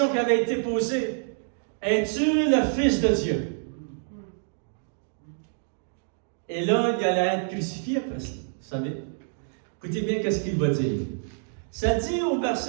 qui avait été posée, es-tu le Fils de Dieu? Et là, il allait être crucifié après ça, vous savez. Écoutez bien qu'est-ce qu'il va dire. Ça dit au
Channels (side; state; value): left; silent; digital silence